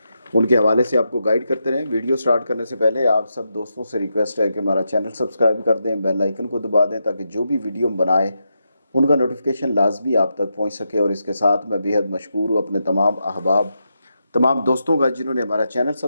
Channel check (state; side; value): inverted; both; correlation -0.85